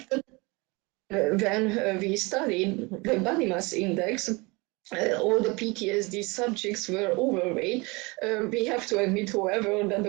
when we studied the body mass index, all the PTSD subjects were overweight. We have to admit, however, that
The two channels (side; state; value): left; quieter; 26.2 dB